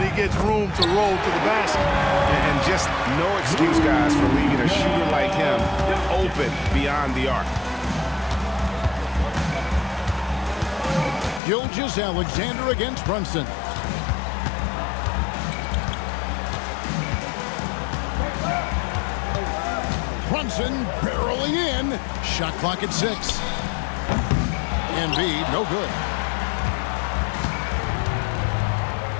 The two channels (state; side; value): drops out; right; at 11.4 s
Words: he gets room to roll to the basket. And just no excuse, guys, for leaving a shooter like him open beyond the arc. Gilgeous-Alexander against Brunson. Brunson barreling in. Shot clock at 6. Embiid, no good.